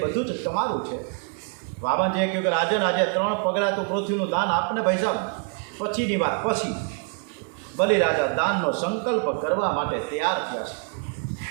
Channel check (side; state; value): left; quieter; 37.3 dB